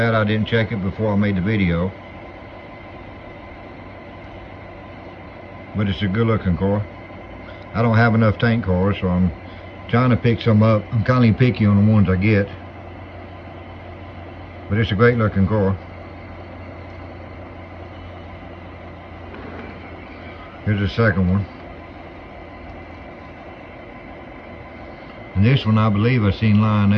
I didn't check it before I made the video. But it's a good looking car. I don't have enough tank cars, so I'm trying to pick some up. I'm kind of picky on the ones I get. But it's a great looking car. Here's the second one. And this one, I believe I seen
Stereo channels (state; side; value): identical; both; correlation 1.00